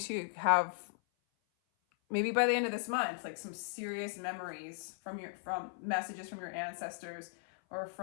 have, maybe by the end of this month, like some serious memories from messages from your ancestors, or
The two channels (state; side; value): silent; right; 53 dB below the other